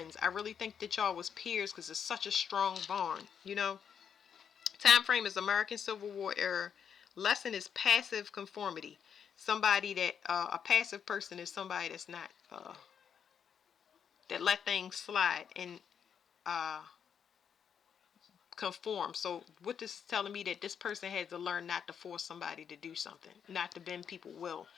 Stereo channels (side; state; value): right; quieter; 7.7 dB